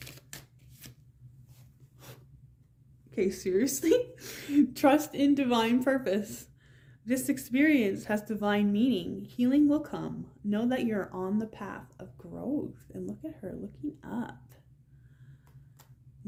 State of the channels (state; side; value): identical; both; correlation 1.00